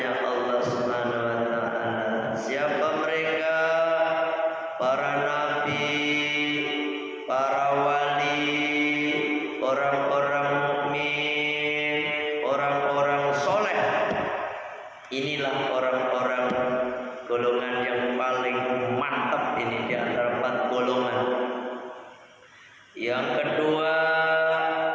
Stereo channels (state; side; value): identical; both; correlation 1.00